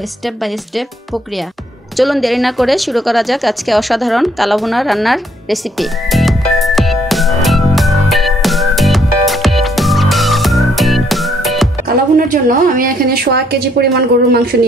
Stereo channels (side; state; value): both; normal; correlation 0.69